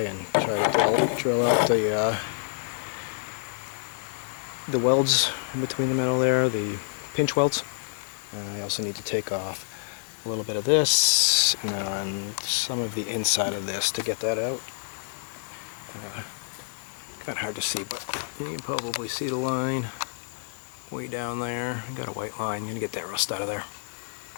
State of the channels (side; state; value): right; silent; digital silence